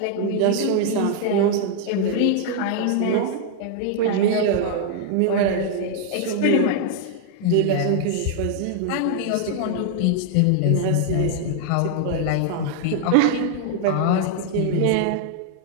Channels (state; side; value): different; both; correlation 0.00